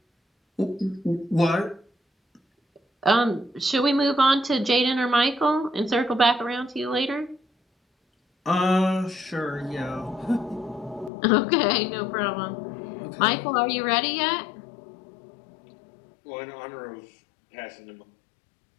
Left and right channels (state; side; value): drops out; right; at 11.1 s